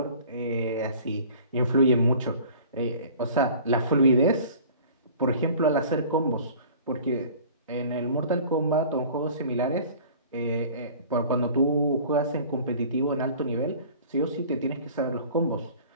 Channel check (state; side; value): inverted; both; correlation -0.46